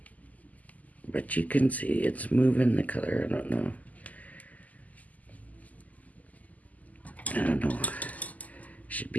But you can see it's moving the color. I don't know. Should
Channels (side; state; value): right; late; 0.077 ms